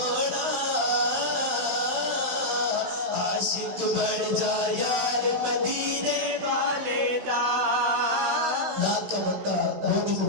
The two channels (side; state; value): left; late; 16 ms